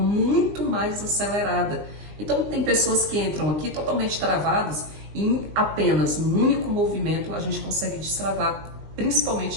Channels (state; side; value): late; left; 20 ms